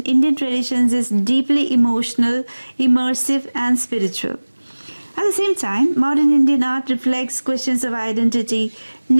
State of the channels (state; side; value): inverted; both; correlation -1.00